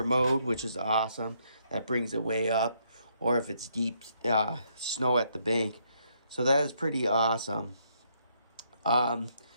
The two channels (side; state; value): both; inverted; correlation -0.73